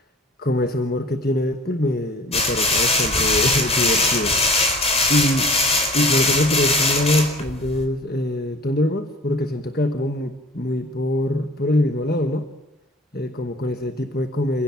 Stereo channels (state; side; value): normal; both; correlation 0.45